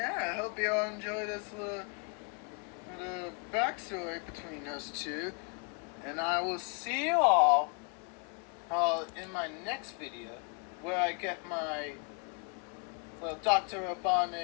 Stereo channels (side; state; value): right; quieter; 37.4 dB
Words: I hope you all enjoy this little backstory between us two. And I will see you all in my next video, where I get my Dr.